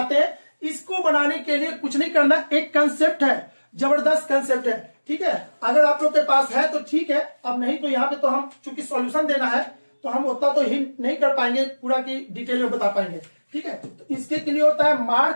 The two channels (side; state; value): both; inverted; correlation -1.00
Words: हैं, इसको बनाने के लिए कुछ नहीं करना, एक कंसेप्ट है जबरदस्त कंसेप्ट है। ठीक है, अगर आप लोग के पास है तो ठीक है, अब नहीं तो यहाँ पे तो हम चूंकि सॉल्यूशन देना है तो हम उतना तो हिंट नहीं कर पाएंगे, पूरा की डिटेल में बता पाएंगे। ठीक है, तो इसके के लिए होता है